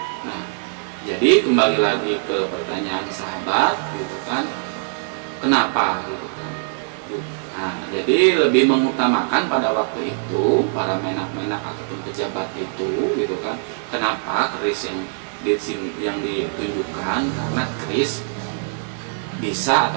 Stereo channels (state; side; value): silent; left; digital silence